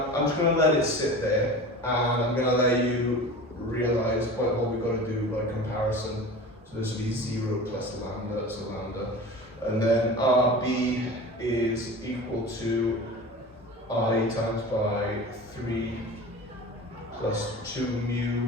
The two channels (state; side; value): normal; both; correlation 0.35